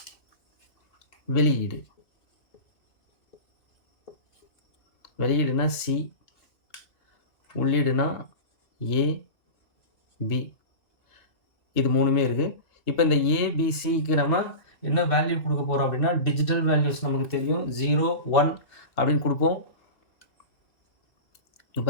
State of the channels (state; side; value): late; right; 2.4 ms